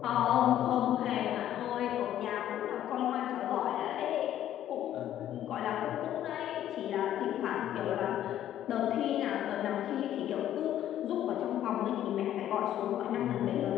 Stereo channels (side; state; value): right; quieter; 11.7 dB